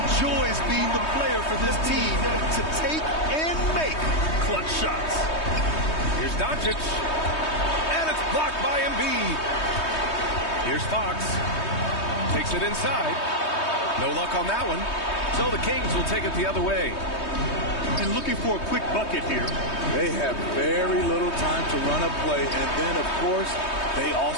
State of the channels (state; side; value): late; right; 3.2 ms